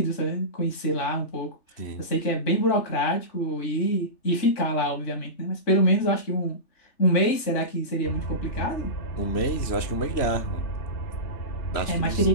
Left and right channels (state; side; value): late; right; 3.4 ms